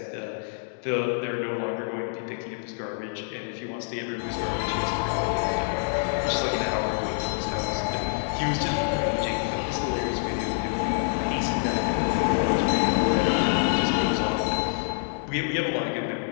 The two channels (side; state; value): right; silent; digital silence